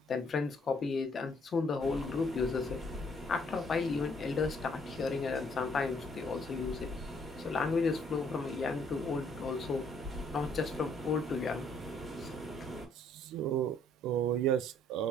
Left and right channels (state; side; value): normal; both; correlation 0.65